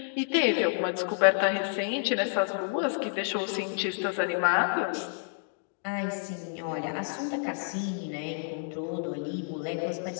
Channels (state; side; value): silent; right; digital silence